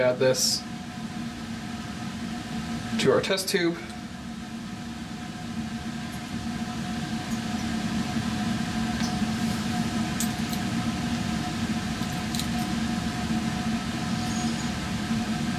this to our test tube.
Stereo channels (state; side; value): identical; both; correlation 1.00